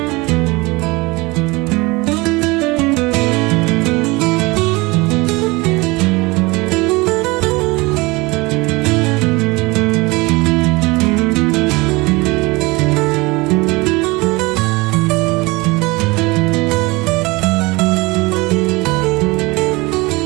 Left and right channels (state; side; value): quieter; left; 23.9 dB